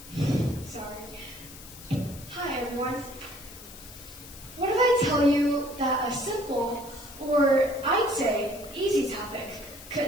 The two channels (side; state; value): left; noise; hiss, 16 dB below the sound